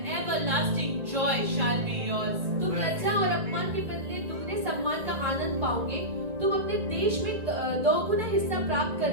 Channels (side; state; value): left; late; 1.9 ms